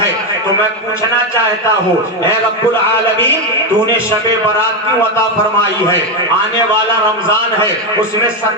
تو میں پوچھنا چاہتا ہوں اے رب العالمین، تو نے شب برات کیوں عطا فرمائی ہے؟ آنے والا رمضان ہے، اس میں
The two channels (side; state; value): both; normal; correlation 0.09